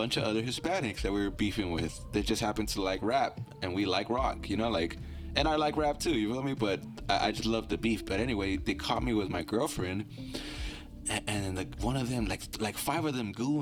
of other Hispanics that we were beefing with. They just happened to like rap, and we like rock, you know, like, and I like rap too, you feel me? But I just love the beef. But anyway, they caught me with my girlfriend, and like one of them, like 5 of them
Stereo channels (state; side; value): identical; both; correlation 1.00